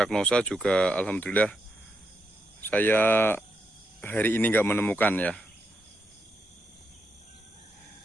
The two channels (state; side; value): normal; both; correlation 0.82